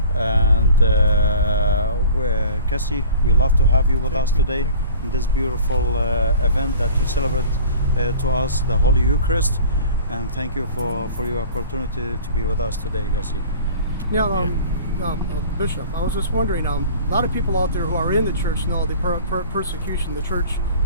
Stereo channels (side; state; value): both; inverted; correlation -0.43